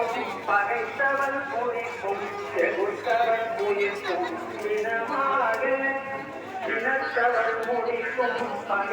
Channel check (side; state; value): both; identical; correlation 1.00